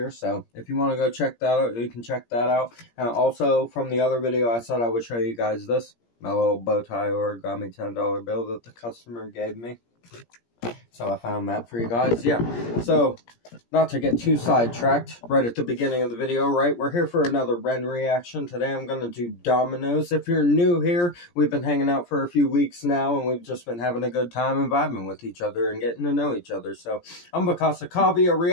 so if you want to go check that out, you can check that out. And also, from the other video, I said I would show you guys this, my little bow tie origami $10 bill that the customer gave me. So I found that for you guys, yeah. So, not to get too sidetracked right at the beginning of the video, right? We're here for another Ren reaction. Today I'm going to do Dominoes. If you're new here, we've been hanging out for a few weeks now, and we've just been having a good time and vibing with each other and getting to know each other. So, I'm Bakasa Kavi. A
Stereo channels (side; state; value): right; late; 17 ms